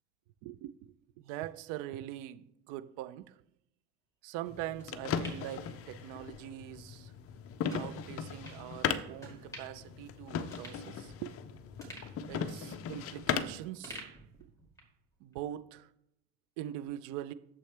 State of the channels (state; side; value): normal; both; correlation 0.12